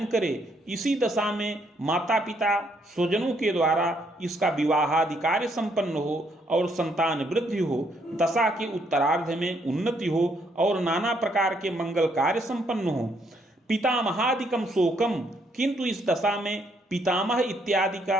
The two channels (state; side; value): normal; both; correlation 0.71